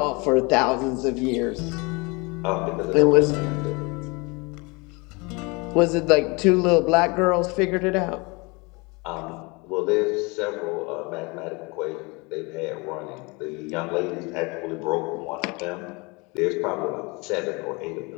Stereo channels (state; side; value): quieter; right; 27.7 dB